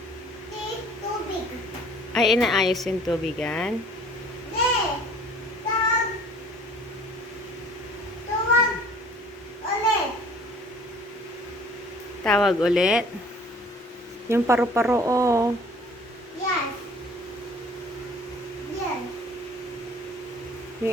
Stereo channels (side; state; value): both; normal; correlation 0.52